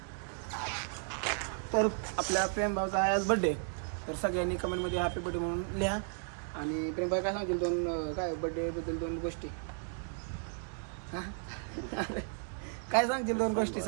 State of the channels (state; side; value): silent; left; 55 dB below the other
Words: तर आपल्या प्रेमभाऊचा आहे आज बड्डे. तर सगळ्यांनी कमेंटमध्ये हॅपी बड्डे म्हणून लिहा. आणि प्रेमभाई काय सांगतील दोन काय बड्डेबद्दल दोन गोष्टी? हां काय सांगतील दोन गोष्टी?